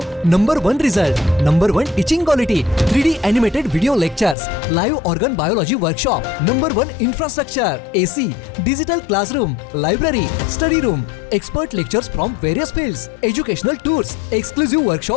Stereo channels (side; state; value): right; drops out; at 4.4 s